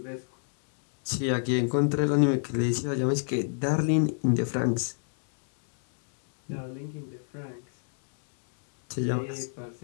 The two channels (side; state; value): right; silent; digital silence